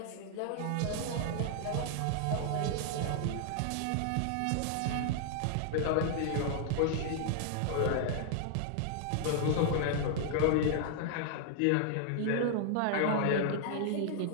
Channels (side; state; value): both; different; correlation 0.00